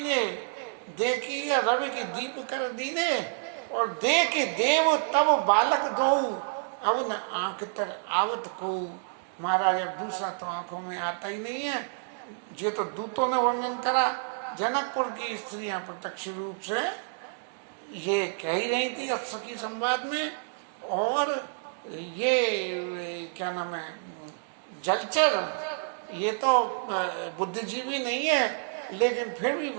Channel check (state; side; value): silent; left; digital silence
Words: देखिया रवि की दीप कर दीने, और देख देव तब बालक दो, अब न आंख तर आवत को। महाराज अब दूसरा तो आंखों में आता ही नहीं है। ये तो दूतों ने वर्णन करा, जनकपुर की स्त्रियां प्रत्यक्ष रूप से ये कह ही रही थी सखी संवाद में। और ये क्या नाम है, जलचर, ये तो बुद्धिजीवी नहीं है, लेकिन फिर भी